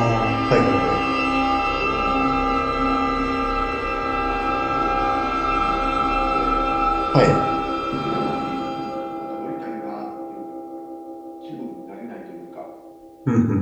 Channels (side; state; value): both; identical; correlation 1.00